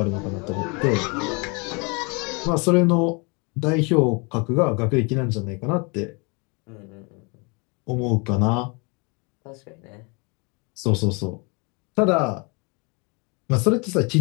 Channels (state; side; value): quieter; right; 31.4 dB